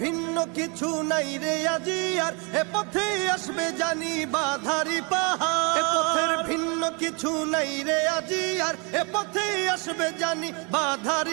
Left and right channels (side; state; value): left; quieter; 32.1 dB